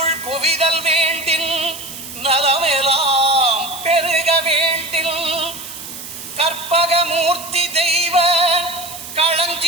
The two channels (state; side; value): noise; right; hiss, 11 dB below the sound